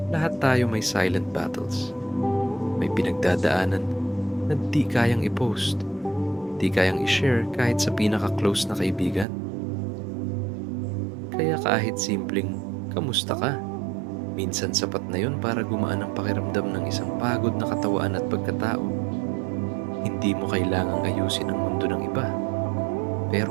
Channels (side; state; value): left; drops out; at 9.2 s